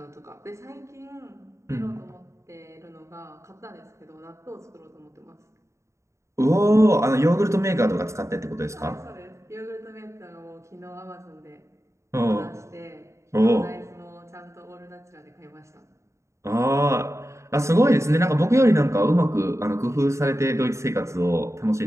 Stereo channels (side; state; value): left; late; 0.14 ms